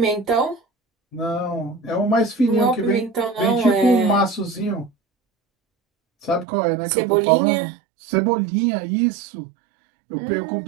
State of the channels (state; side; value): drops out; left; at 6.5 s